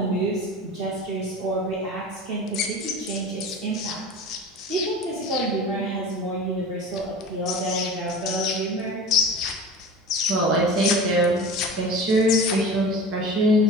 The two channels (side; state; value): both; normal; correlation 0.34